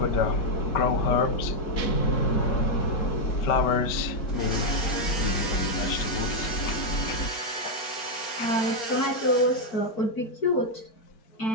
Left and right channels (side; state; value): right; late; 4.4 ms